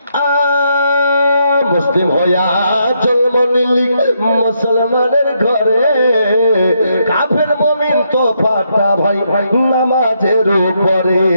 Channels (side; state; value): both; inverted; correlation -0.77